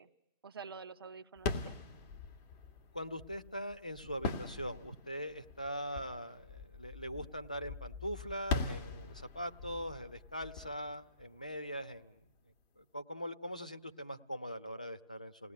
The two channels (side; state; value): both; inverted; correlation -0.58